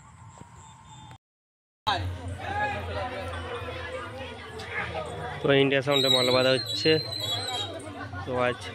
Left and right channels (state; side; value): identical; both; correlation 1.00